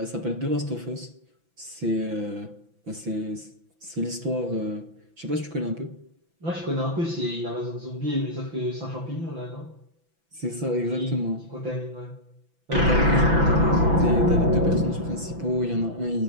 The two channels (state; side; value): late; left; 6.0 ms